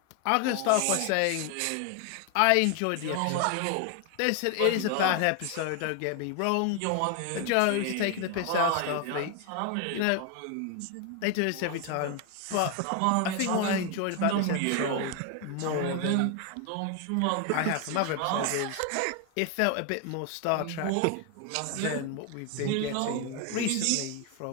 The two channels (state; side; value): different; both; correlation 0.01